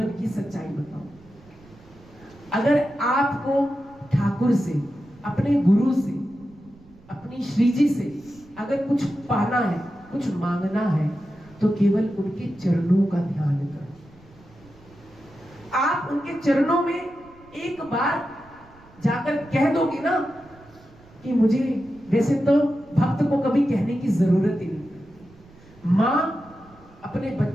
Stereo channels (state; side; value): noise; right; rumble, 25 dB below the sound